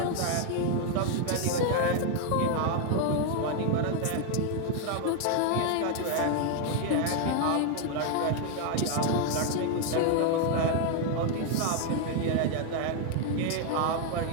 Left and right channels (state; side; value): different; both; correlation 0.00